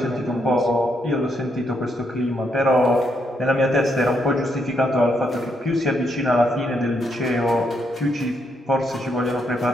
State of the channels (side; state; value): both; normal; correlation 0.77